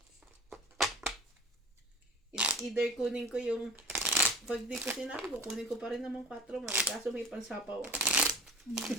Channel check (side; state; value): both; normal; correlation 0.41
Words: It's either kunin ko yung pag di ko sinabi ko, kunin ko pa rin naman 4 man. Kaso may pansapaw ako.